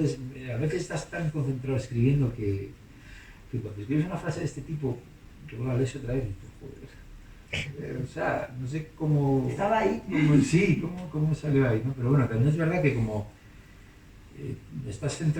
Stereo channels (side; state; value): both; identical; correlation 1.00